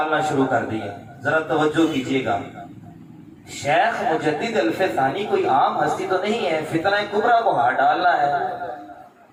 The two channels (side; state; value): both; identical; correlation 1.00